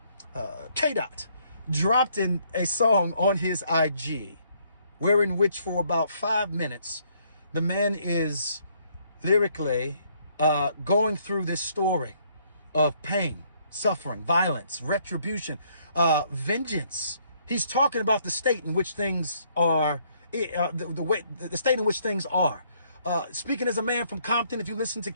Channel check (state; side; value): inverted; both; correlation -0.67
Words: K-Dot, dropped in a song on his IG, wherein which for about 5 minutes, the man is lyrically going through this story of pain, suffering, violence, retribution, vengeance. He's talking about the state in which things are, the state in which things are. Speaking as a man from Compton, if you listen to